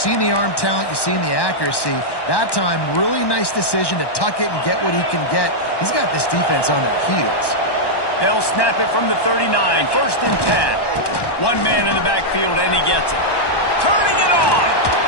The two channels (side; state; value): right; late; 1.1 ms